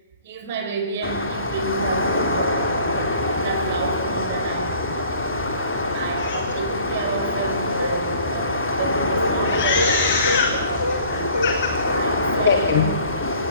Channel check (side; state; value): both; inverted; correlation -0.52